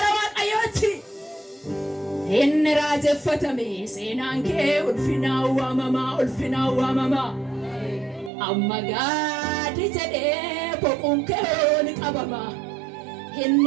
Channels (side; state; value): left; drops out; at 8.3 s